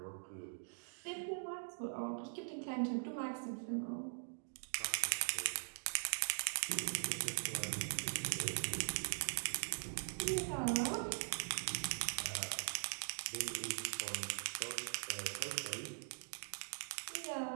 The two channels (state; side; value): silent; left; digital silence